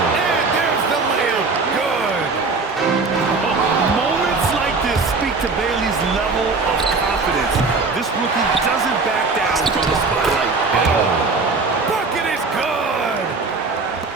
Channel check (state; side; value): quieter; left; 4.1 dB